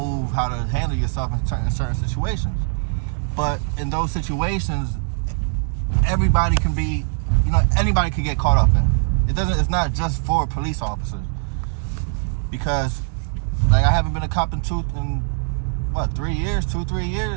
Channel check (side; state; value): left; silent; 65 dB below the other